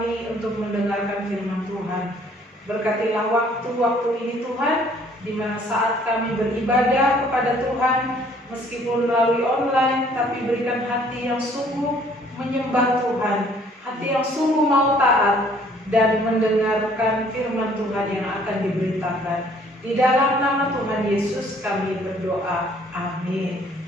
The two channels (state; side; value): normal; both; correlation 0.59